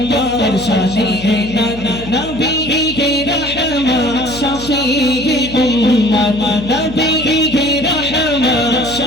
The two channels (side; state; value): left; noise; hum, 14 dB below the sound